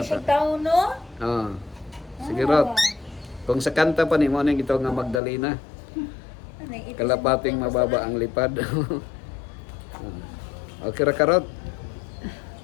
kay tao no? Oo. Sige rot. Kung sa kanta pa ni mo nang gitaw nga Magdalena. Kalapating mababa ang lipad. Okay ra karot.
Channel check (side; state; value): right; drops out; at 5.2 s